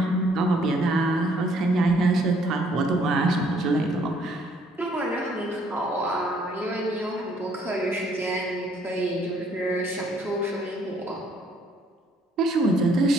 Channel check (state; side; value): normal; both; correlation 0.65